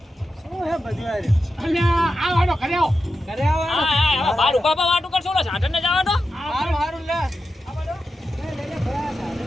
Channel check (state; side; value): normal; both; correlation 0.90